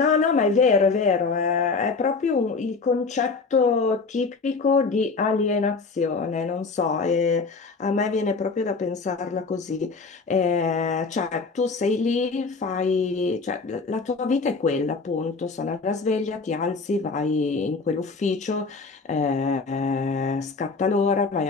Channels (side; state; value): right; quieter; 4.3 dB